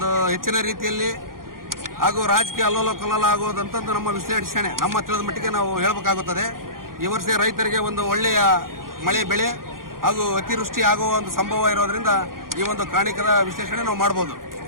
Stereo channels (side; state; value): left; late; 0.91 ms